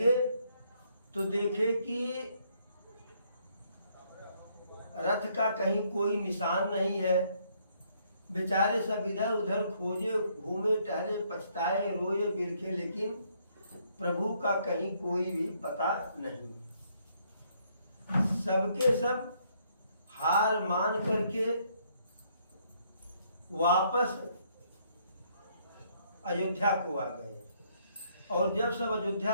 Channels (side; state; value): both; inverted; correlation -0.69